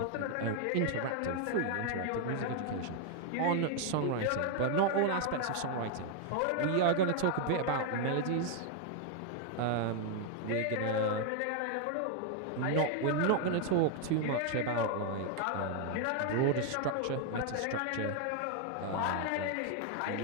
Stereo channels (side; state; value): both; different; correlation 0.00